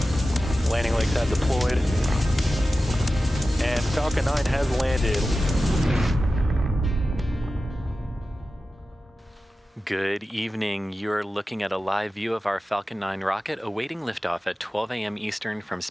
Landing legs have deployed. And Falcon 9 has landed. Good evening. You're looking at a live view of our Falcon 9 rocket awaiting liftoff at 12 a.m. Eastern from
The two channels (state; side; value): normal; both; correlation 0.94